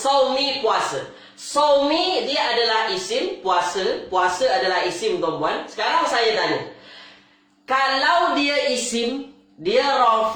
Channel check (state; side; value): identical; both; correlation 1.00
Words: puasa. Saumi dia adalah isim, puasa. Puasa adalah isim, tuan-puan. Sekarang saya tanya. Kalau dia isim, dia